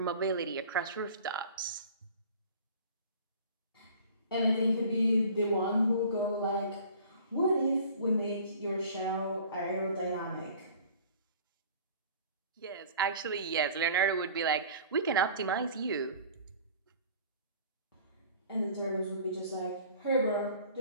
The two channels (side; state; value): both; inverted; correlation -0.46